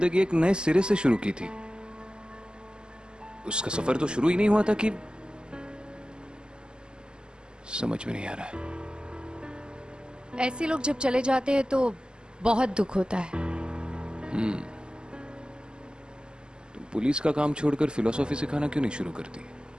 एक नए सिरे से शुरू की थी। उसका सफर तो शुरू ही नहीं हुआ था कि समझ में नहीं आ रहा है। ऐसे लोग जब चले जाते हैं तो बहुत दुख होता है। तुम पुलिस का काम छोड़कर फिलोसॉफी सिखाना क्यों नहीं शुरू करती?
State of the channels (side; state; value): left; late; 0.047 ms